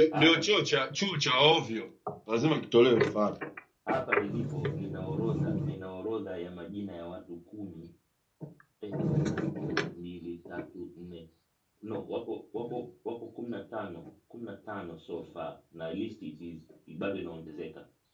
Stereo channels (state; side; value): identical; both; correlation 1.00